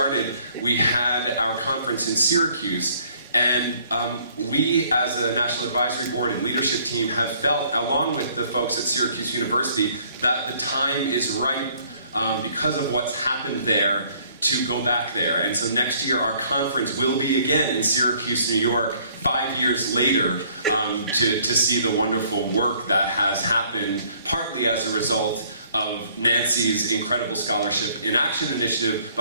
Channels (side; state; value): both; inverted; correlation -0.60